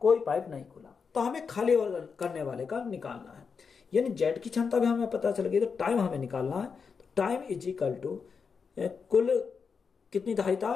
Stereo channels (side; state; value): right; quieter; 5.7 dB